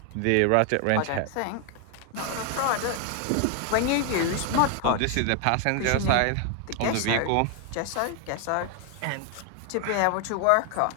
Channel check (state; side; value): different; both; correlation 0.00